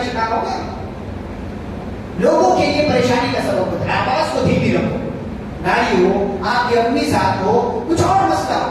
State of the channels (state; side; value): identical; both; correlation 1.00